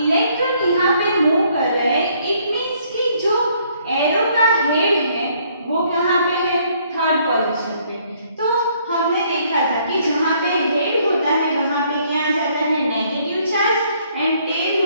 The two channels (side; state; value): both; inverted; correlation -0.66